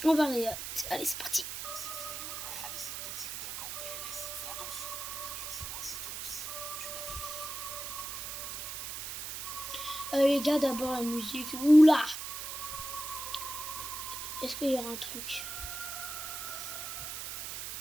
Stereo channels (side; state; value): right; noise; hiss, 6 dB below the sound